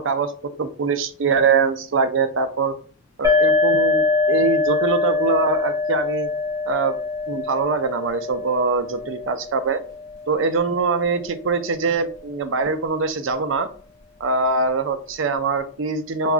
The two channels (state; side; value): normal; both; correlation -0.06